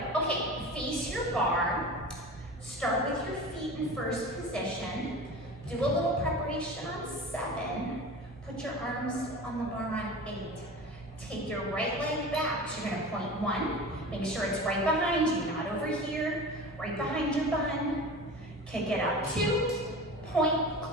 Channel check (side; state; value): both; normal; correlation 0.34